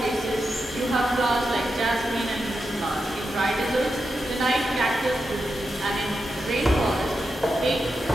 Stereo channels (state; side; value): normal; both; correlation 0.88